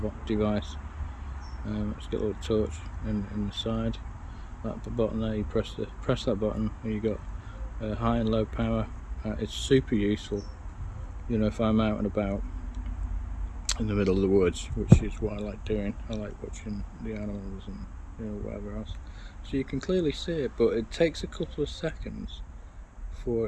device. It's got a little torch in the side. That button there, you press that button and you got high and low power. It's super useful, if I'm out and about in the middle of the woods, which is what I like doing. I like watching the animals and whatever else. So you can clearly see it, but it takes a couple of seconds for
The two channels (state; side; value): identical; both; correlation 1.00